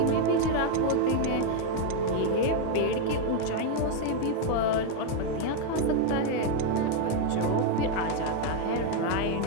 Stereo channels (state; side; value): different; both; correlation 0.01